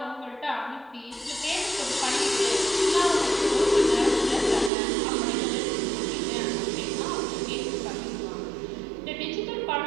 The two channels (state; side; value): drops out; left; at 4.7 s